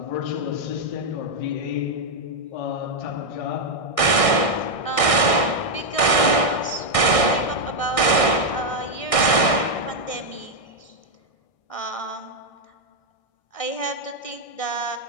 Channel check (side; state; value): right; late; 1.6 ms